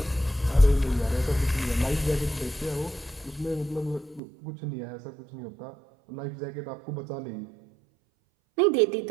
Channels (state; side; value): drops out; left; at 4.2 s